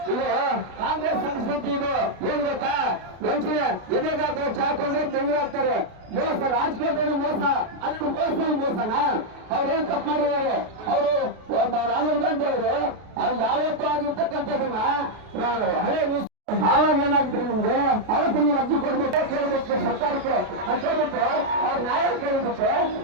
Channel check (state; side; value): late; left; 33 ms